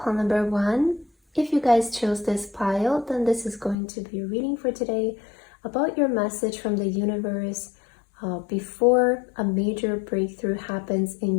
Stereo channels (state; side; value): drops out; right; at 3.8 s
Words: number 1. If you guys chose this pile, then this is going to be a reading for today about your message from the universe before a major breakthrough happens in